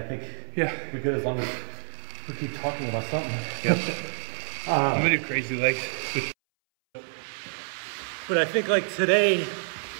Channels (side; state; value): left; silent; 59 dB below the other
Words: think we're good as long as we keep talking about something. Yep. I'm gonna do crazy legs. But I think like today,